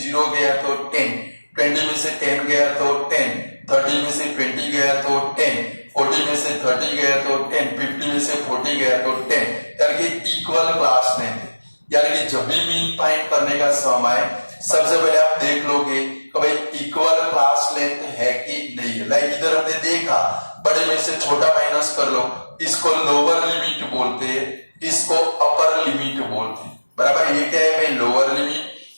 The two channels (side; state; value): both; inverted; correlation -1.00